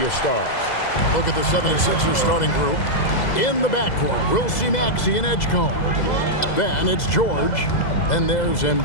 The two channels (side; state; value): right; late; 2.0 ms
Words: stars. Look at the 76ers starting group. In the backcourt, we'll see Maxey and Edgecombe. Then it's George. Then there's